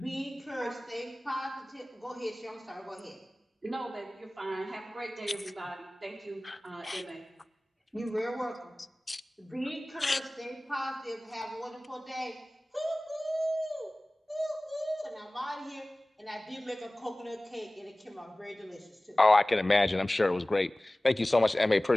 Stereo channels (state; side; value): normal; both; correlation 0.98